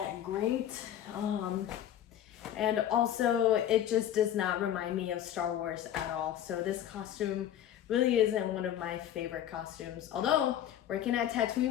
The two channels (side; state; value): right; quieter; 10.9 dB